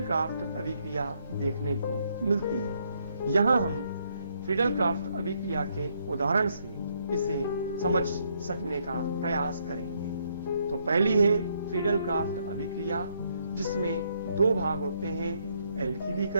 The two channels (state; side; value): inverted; both; correlation -0.73